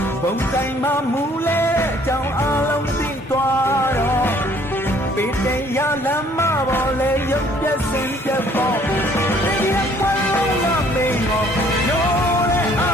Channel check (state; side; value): normal; both; correlation 0.60